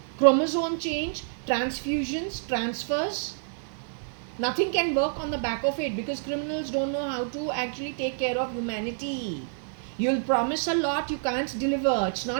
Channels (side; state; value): left; silent; 56 dB below the other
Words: chromosome change, transfusions, transfers. Nothing can work on the back of it because criminals don't know how to actually take care of humanity. You'll promise a lot, you can't deliver. It's